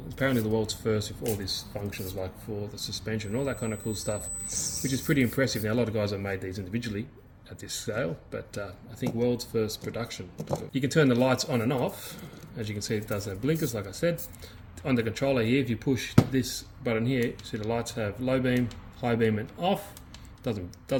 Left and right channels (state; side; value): identical; both; correlation 1.00